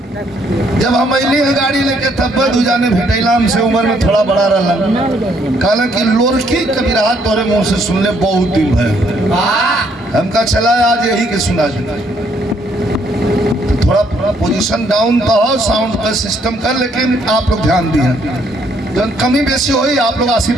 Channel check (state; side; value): normal; both; correlation 0.69